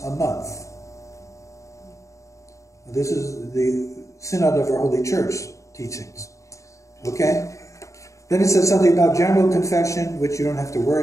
a month. This is the Synod of our Holy Church teachings. Okay? Then it says something about general confession, which you don't have to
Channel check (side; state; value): right; late; 0.15 ms